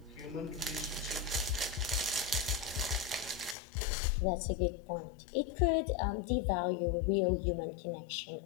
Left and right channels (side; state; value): right; drops out; at 3.6 s